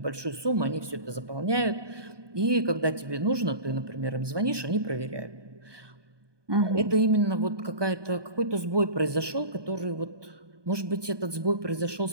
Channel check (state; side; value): late; left; 1.2 ms